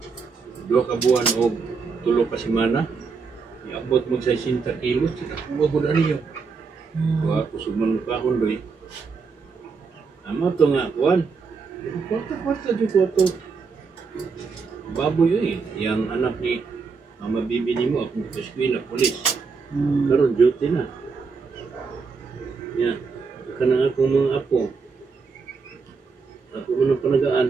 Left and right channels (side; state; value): left; quieter; 5.0 dB